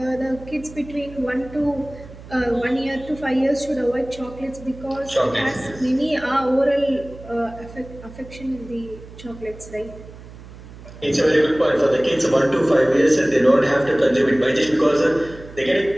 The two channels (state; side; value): noise; right; hum, 17 dB below the sound